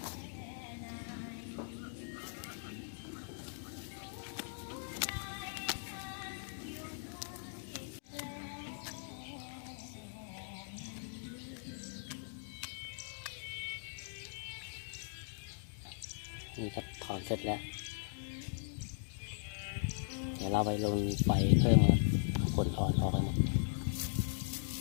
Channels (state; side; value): silent; right; digital silence